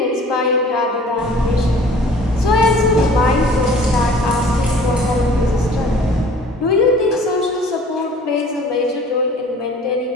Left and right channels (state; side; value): normal; both; correlation 0.50